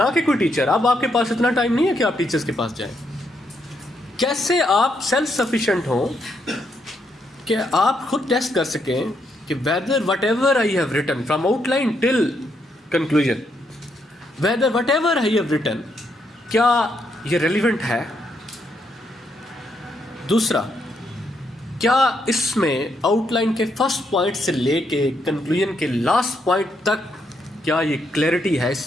کہ کوئی ٹیچر. اب آپ کے پاس اتنا ٹائم نہیں ہے کہ آپ ٹیچرز کے پاس جائیں. کیسے آپ سیلف سفیشینٹ ہوں کہ آپ خود ٹیسٹ کر سکیں کہ whether whatever I have written from outline till conclusion, whether whatever I have written کیا یہ ریلیونٹ ہے. دوسرا، کیا اس میں آؤٹ لائن کے فرسٹ پوائنٹ سے لے کے کنکلوژن کے لاسٹ پوائنٹ تک کیا یہ کلیئرٹی ہے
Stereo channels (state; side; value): normal; both; correlation 0.77